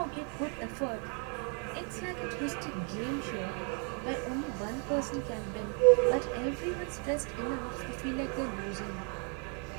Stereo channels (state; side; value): quieter; left; 38.8 dB